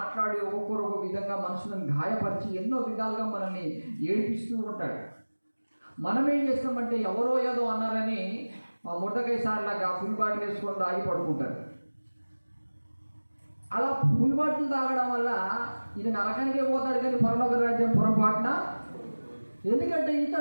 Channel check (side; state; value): both; inverted; correlation -1.00